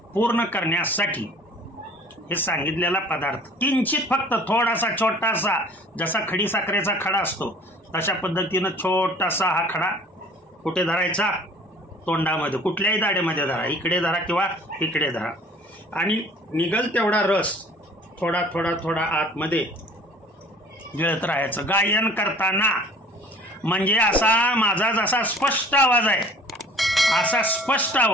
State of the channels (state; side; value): normal; both; correlation 0.50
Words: पूर्ण करण्यासाठी हे सांगितलेला पदार्थ किंचित फक्त थोडासा छोटासा, जसा खडीसाखरेचा खडा असतो तशा पद्धतीनं छोटासा हा खडा कुठे धरायचा? तोंडामध्ये. कुठल्याही दाढेमध्ये धरा, इकडे धरा किंवा इकडे धरा. आणि निघल तेवढा रस थोडा थोडा थोडा आतमध्ये गिळत राहायचं गायन करताना. म्हणजे असा माझा जसा स्पष्ट आवाज आहे असा स्पष्ट